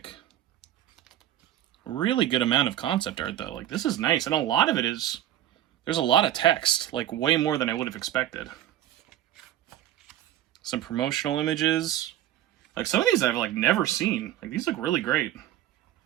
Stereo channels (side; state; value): left; quieter; 12.5 dB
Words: Really good amount of concept art, though. Like, this is nice. And a lot of it is... There's a lot of text. Like, way more than I would have expected. Some promotional images. Like, some of these I've, like, never seen. Like, these look really great.